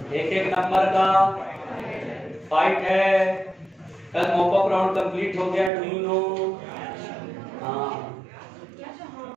एक एक नंबर का फाइट है। कल मॉपअप राउंड कंप्लीट हो गया, डू यू नो? हाँ,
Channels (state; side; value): drops out; left; at 5.7 s